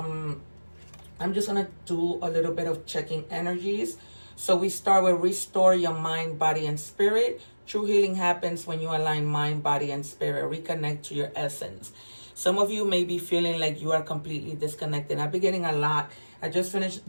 I'm just going to do a little bit of checking energies. So we start with restore your mind, body, and spirit. True healing happens when you align mind, body, and spirit. Reconnect to your essence. Some of you may be feeling like you are completely disconnected. I've been getting a lot. I just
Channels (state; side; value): inverted; both; correlation -1.00